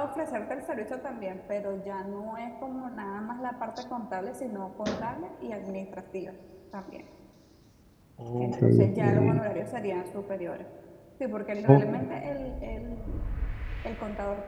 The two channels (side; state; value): both; identical; correlation 1.00